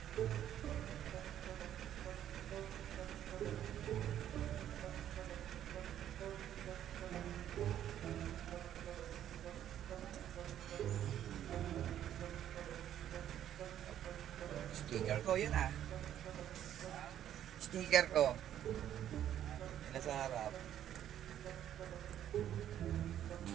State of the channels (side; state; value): left; quieter; 10.9 dB